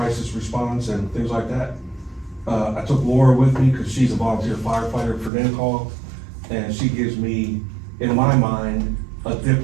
response and things like that. I took Laura with me because she's a volunteer firefighter for NCAL, and she gives me, in my mind, a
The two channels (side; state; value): left; drops out; at 5.3 s